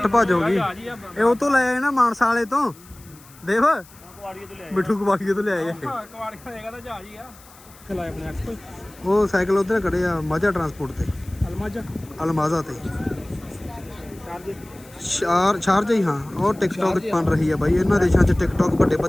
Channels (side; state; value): left; noise; hiss, 24 dB below the sound